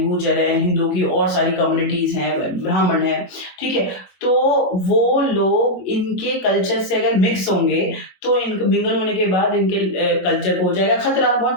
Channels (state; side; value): late; right; 22 ms